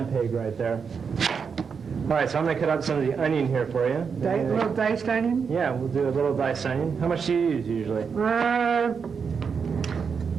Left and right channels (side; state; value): left; quieter; 6.1 dB